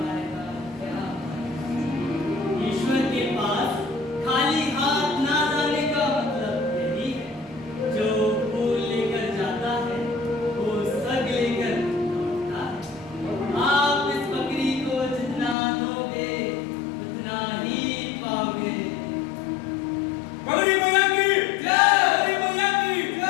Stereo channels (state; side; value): drops out; right; at 15.6 s